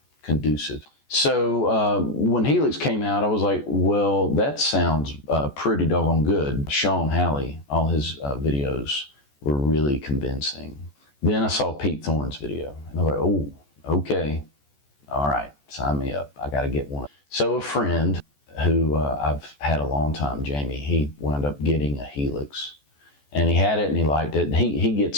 conducive. So when Helix came out, I was like, well, that sounds pretty doggone good. Sean Halley, all his videos were really convincing. Then I saw Pete Thorne's video, and I was like, oh, okay. All right, sign me up. I got to get one. So a friend who I've had a long time, Jamie, he wound up getting a Helix. And he had it and he liked it. And he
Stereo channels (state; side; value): late; right; 14 ms